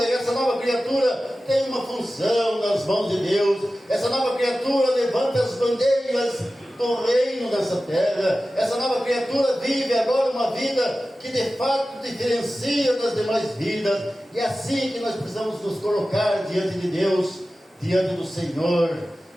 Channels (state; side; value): normal; both; correlation 0.95